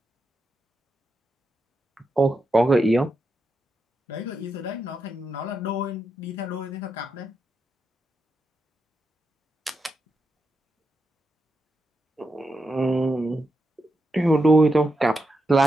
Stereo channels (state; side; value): normal; both; correlation 0.86